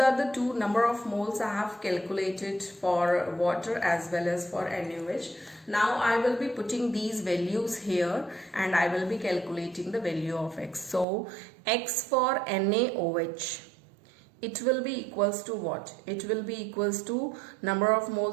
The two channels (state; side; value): drops out; left; at 11.1 s